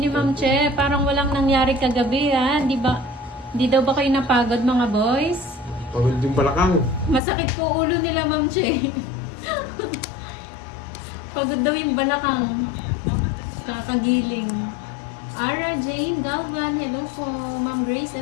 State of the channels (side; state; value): right; drops out; at 7.2 s